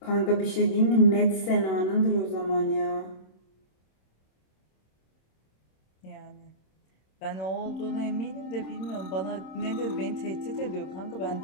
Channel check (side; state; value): right; late; 26 ms